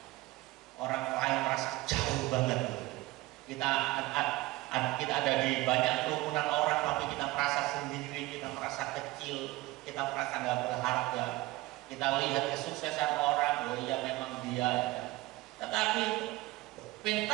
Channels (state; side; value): quieter; left; 19.7 dB